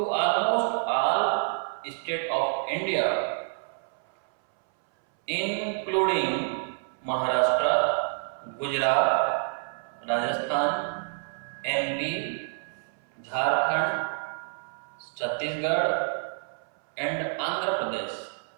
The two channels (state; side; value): silent; left; 59 dB below the other